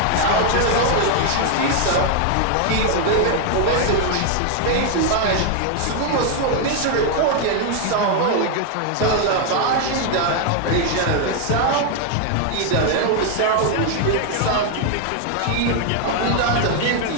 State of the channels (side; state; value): both; different; correlation 0.00